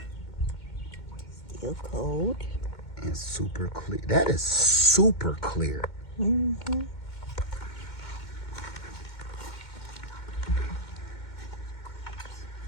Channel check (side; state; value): right; late; 2.1 ms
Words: Still cold. And super clear. That is super clear. Mm-hmm.